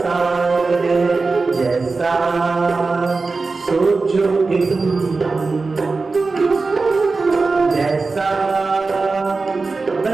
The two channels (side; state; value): left; quieter; 4.0 dB